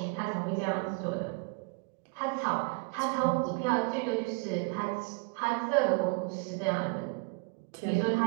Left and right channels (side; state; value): left; quieter; 30.7 dB